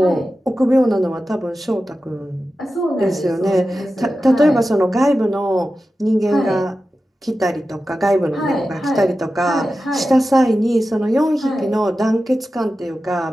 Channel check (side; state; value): both; normal; correlation 0.93